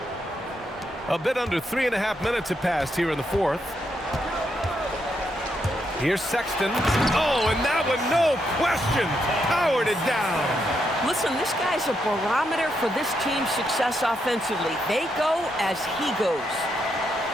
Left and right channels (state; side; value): normal; both; correlation 0.80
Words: A bit under 3.5 minutes have passed here in the 4th. Here's Sexton. Oh, and that one, no question, powered it down. Listen, this guy's a barometer for this team's success offensively. They go as he goes.